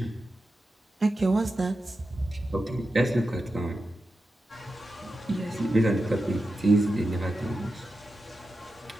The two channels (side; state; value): both; normal; correlation 0.91